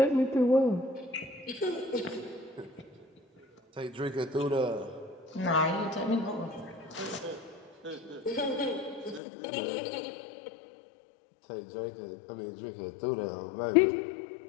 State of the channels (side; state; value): right; drops out; at 9.2 s